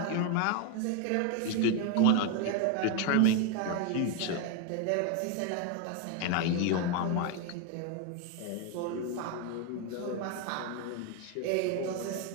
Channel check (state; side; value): different; both; correlation 0.02